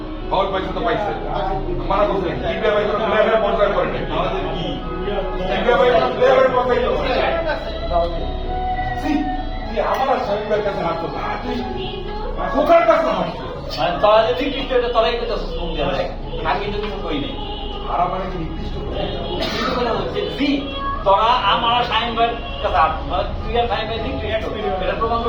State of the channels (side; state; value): both; identical; correlation 1.00